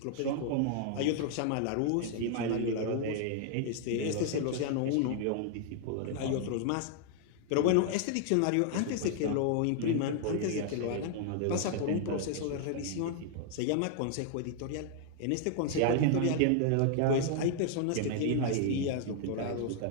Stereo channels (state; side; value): different; both; correlation 0.00